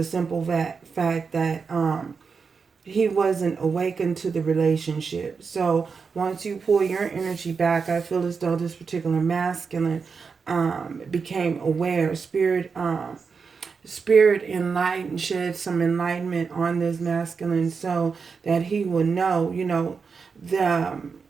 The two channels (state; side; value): quieter; left; 5.3 dB